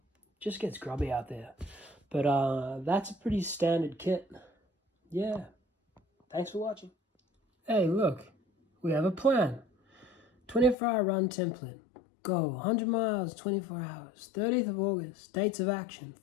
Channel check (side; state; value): right; drops out; at 10.8 s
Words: Just gets grubby out there. But that's a pretty standard kit. Yeah. Thanks for watching. Hey, look. We have a plan. 24-hour run template. Go 100 miles, 24 hours. 30th of August. Dates of action.